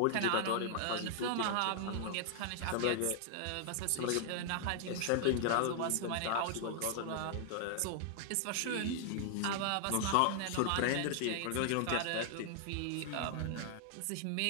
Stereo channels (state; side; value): different; both; correlation 0.00